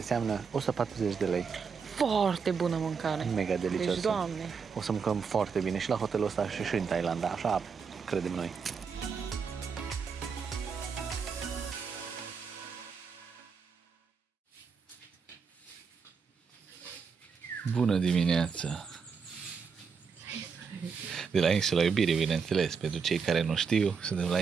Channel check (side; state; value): left; quieter; 5.8 dB